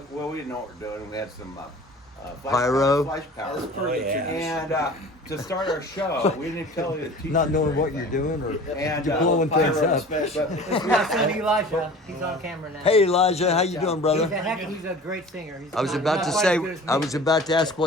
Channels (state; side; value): normal; both; correlation 0.42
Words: Well, we didn't know what we were doing. We had some Pyro? flash powder. As per the yeah. tradition. And to start our show, we didn't tell the teachers. Not knowing or what you're anything. doing or And you're blowing Pyro things up. special. Now send Elijah. He's on camera now. Hey Elijah, how you doing, brother? He's a great singer. He's I was not- about not to quite say, as good as me. I was about to ask